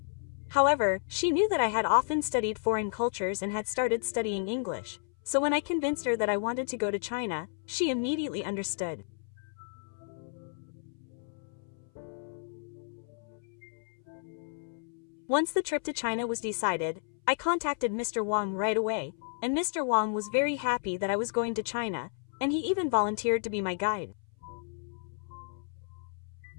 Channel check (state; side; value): silent; right; 56 dB below the other